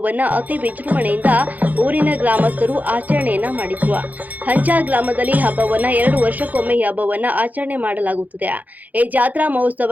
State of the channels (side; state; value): left; late; 0.080 ms